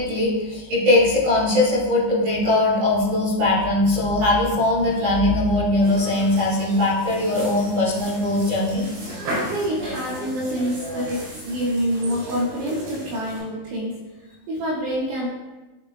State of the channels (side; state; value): left; late; 19 ms